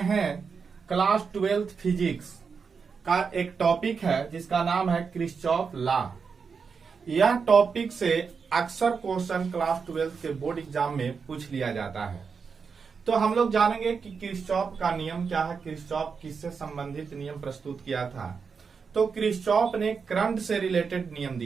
हैं क्लास 12th फिजिक्स का एक टॉपिक है जिसका नाम है किरचॉफ लॉ। यह टॉपिक से अक्सर क्वेश्चन क्लास 12th के बोर्ड एग्जाम में पूछ लिया जाता है। तो हम लोग जानेंगे कि किरचॉफ का नियम क्या है, किरचॉफ किससे संबंधित नियम प्रस्तुत किया था। तो किरचॉफ ने करंट से रिलेटेड नियम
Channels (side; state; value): left; quieter; 5.6 dB